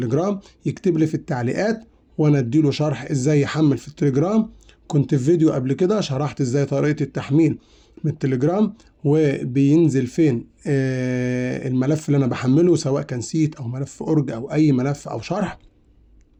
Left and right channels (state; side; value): identical; both; correlation 1.00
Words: يكتب لي في التعليقات وانا اديله شرح ازاي يحمل في التليجرام. كنت في فيديو قبل كده شرحت ازاي طريقة التحميل من التليجرام، وبينزل فين الملف اللي انا بحمله، سواء كان سيت او ملف اورج او اي ملف او شرح.